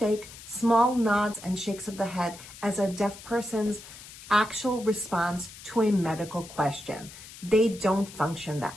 small nods and shakes of the head as a deaf person's actual response to a medical question. They don't function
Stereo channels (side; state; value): left; noise; hiss, 16 dB below the sound